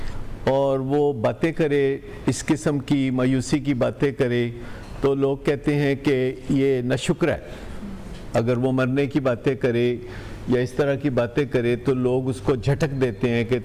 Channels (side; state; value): both; identical; correlation 1.00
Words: اور وہ باتیں کرے, اس قسم کی مایوسی کی باتیں کرے, تو لوگ کہتے ہیں کہ یہ ناشکر ہے. اگر وہ مرنے کی باتیں کرے یا اس طرح کی باتیں کرے تو لوگ اس کو جھٹک دیتے ہیں کہ